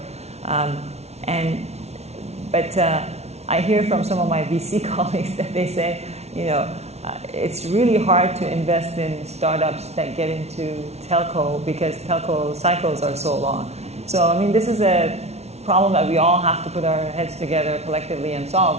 But I hear from some of my VC colleagues that they say, it's really hard to invest in startups that get into telco because telco cycles are so long. So, this is a problem that we all have to put our heads together collectively and solve,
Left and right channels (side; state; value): left; late; 0.31 ms